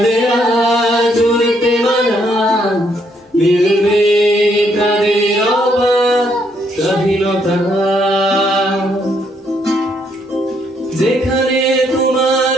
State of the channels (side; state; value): both; normal; correlation 0.72